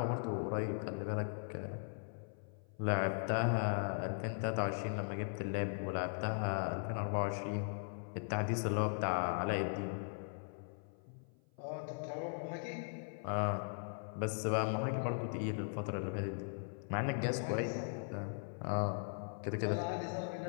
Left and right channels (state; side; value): silent; right; 52 dB below the other